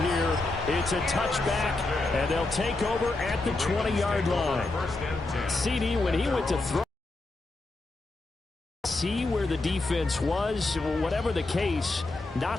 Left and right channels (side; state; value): right; quieter; 3.1 dB